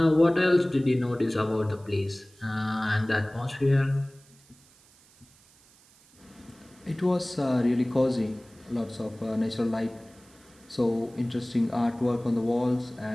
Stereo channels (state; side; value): noise; right; hiss, 28 dB below the sound